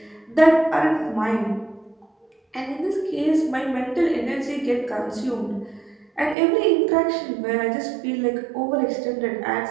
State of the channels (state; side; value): drops out; left; at 6.4 s